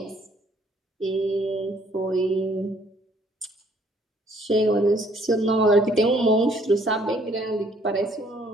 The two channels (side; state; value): both; normal; correlation 0.63